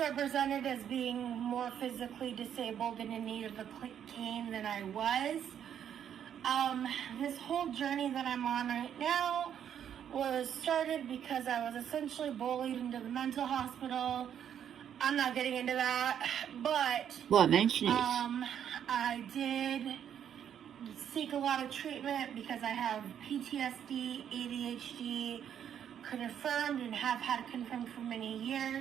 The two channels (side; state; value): left; quieter; 9.2 dB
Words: as being more physically disabled and in need of a cane than I was. This whole journey that I'm on right now was started because I was essentially bullied into the mental hospital. I'm not getting into that, but... Well, mention it. I did seek a lot of treatment because I have PTSD, ADHD, confirmed and have had confirmed for many